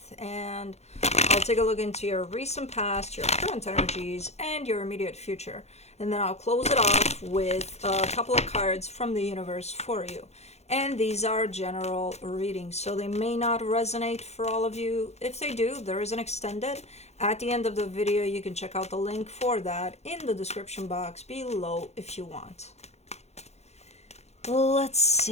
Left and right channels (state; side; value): late; right; 0.31 ms